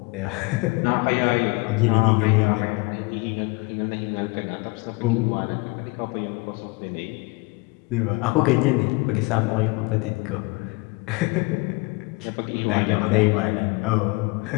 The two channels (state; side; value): quieter; right; 26.6 dB